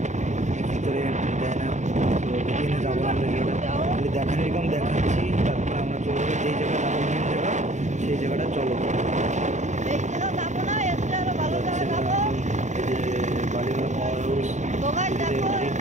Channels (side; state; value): left; late; 0.34 ms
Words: ভিতরে দেয় না। তো এখানে যাবো আমরা, খালি দেখার এরকম দেখাচ্ছি, তারপরে আমরা চলে যাবো যেই জায়গাটা যাবো মেন জায়গা, সেই জায়গাটা চলো। বালিমেলা পাওয়ার হাউস সবাই